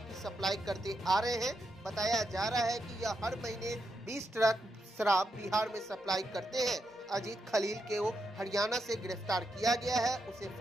सप्लाई करते आ रहे हैं। बताया जा रहा है कि यह हर महीने 20 ट्रक शराब बिहार में सप्लाई करते हैं। अजीत खलील को हरियाणा से गिरफ्तार किया गया है। उसे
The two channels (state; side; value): normal; both; correlation 0.83